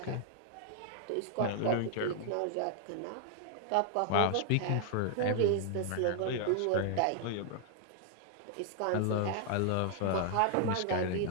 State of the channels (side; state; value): both; different; correlation 0.00